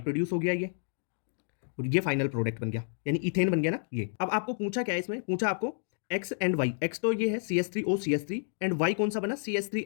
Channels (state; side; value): silent; right; digital silence